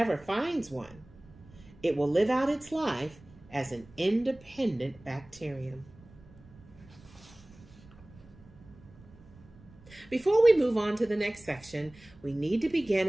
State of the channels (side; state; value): right; noise; rumble, 23 dB below the sound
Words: finds one, it will live out its life as an independent bacterium. Before we move on to the next section, we need to begin